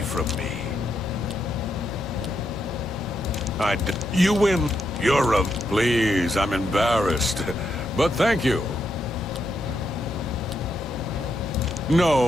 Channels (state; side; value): normal; both; correlation 0.81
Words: from me. You win. You're a... Please, I'm embarrassed. But thank you.